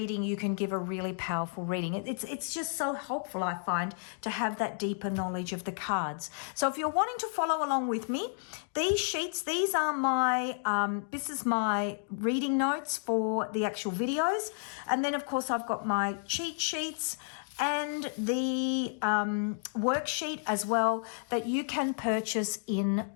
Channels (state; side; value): silent; right; digital silence